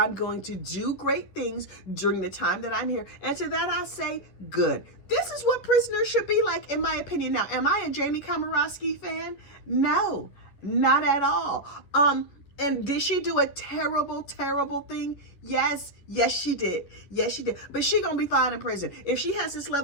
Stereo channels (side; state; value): right; late; 11 ms